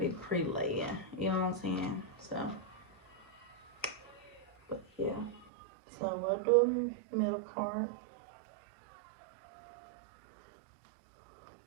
pre-laying, you know what I'm saying? So, but yeah. So we'll do middle part.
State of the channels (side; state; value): left; drops out; at 5.5 s